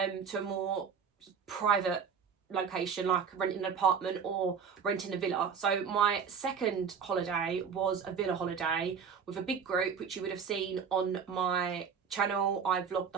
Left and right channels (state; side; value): quieter; left; 6.5 dB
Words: a more private location, like renting an apartment or renting a villa. So my second holiday was a villa holiday with a big group, which you would have seen on my channel. I vlogged